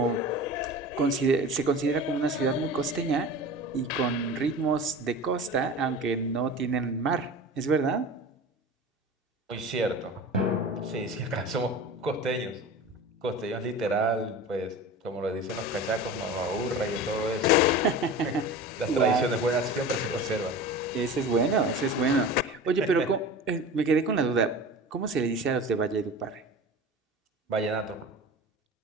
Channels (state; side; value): normal; both; correlation 0.34